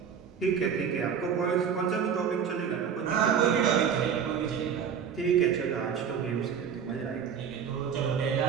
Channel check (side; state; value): left; quieter; 7.4 dB